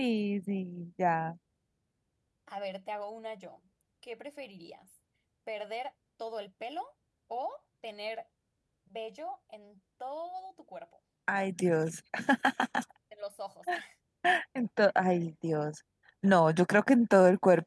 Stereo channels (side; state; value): both; identical; correlation 1.00